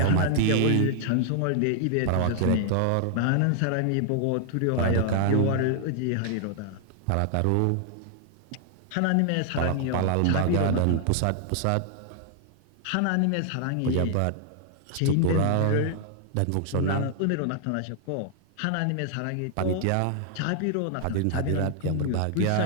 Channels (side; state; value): both; different; correlation 0.00